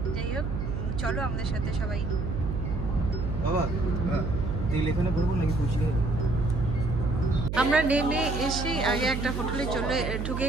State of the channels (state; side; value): noise; right; hum, 3 dB below the sound